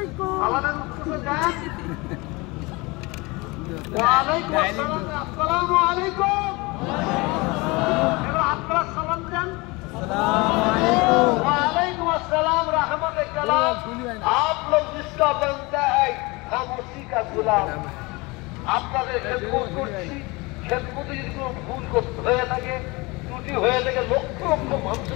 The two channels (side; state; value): right; quieter; 24.9 dB